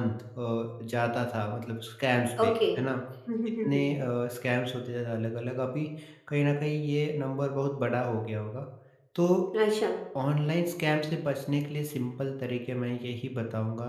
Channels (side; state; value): both; identical; correlation 1.00